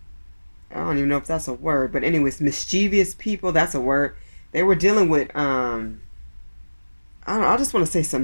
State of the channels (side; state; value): both; inverted; correlation -1.00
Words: don't even know if that's a word, but anyways, mischievous people, that's a word. They were dealing with I don't know, I just want to say